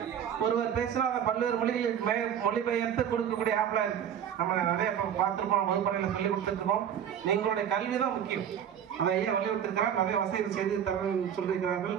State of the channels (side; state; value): left; quieter; 9.1 dB